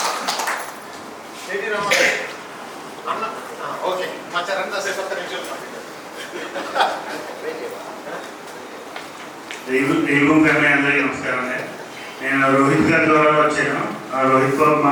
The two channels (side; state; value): both; identical; correlation 1.00